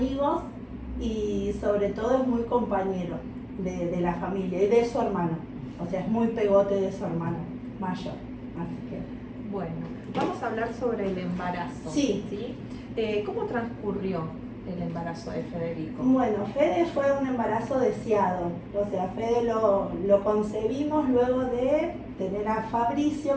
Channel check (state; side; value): identical; both; correlation 1.00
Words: y sobre todo es muy compañero de la familia y de su hermano. O sea, es muy pegote de su hermano mayor. Así que... Bueno, vamos a hablar sobre el embarazo. Sí. ¿Cómo transcurrió el embarazo de Federico? Bueno, Fede fue un embarazo deseado. O sea, Fede lo concebimos luego de tener a